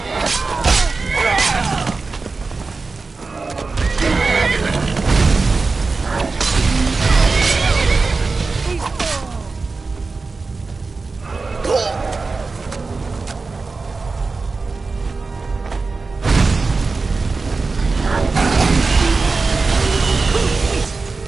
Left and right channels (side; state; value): left; quieter; 4.1 dB